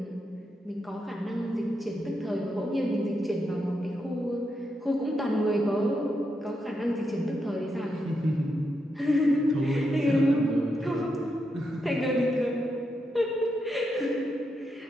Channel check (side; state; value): both; normal; correlation 0.83